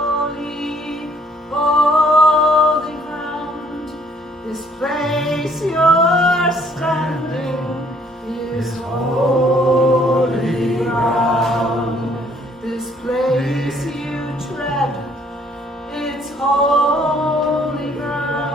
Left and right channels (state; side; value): normal; both; correlation 0.63